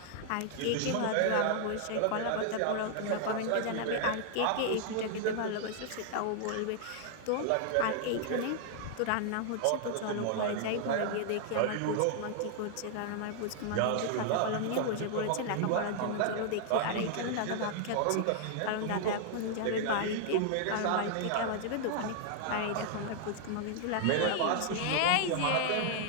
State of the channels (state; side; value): different; both; correlation 0.00